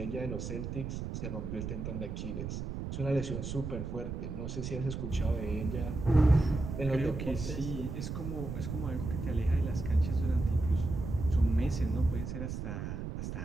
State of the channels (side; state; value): right; noise; rumble, 5 dB below the sound